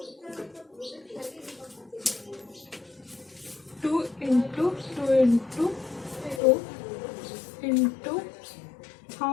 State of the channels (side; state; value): right; drops out; at 6.4 s